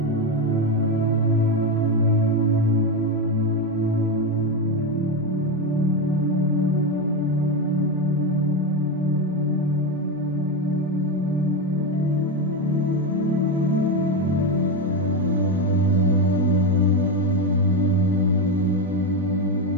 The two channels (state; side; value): normal; both; correlation 0.13